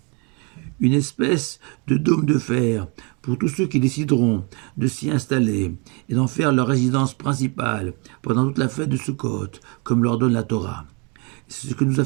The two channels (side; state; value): left; quieter; 32.2 dB